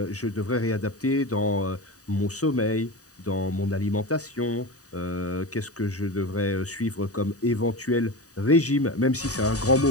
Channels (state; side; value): late; right; 0.66 ms